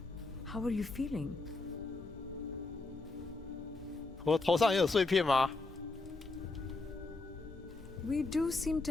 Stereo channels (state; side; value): quieter; right; 3.4 dB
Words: How are you feeling? 我头上也有碎片吗？ We do seem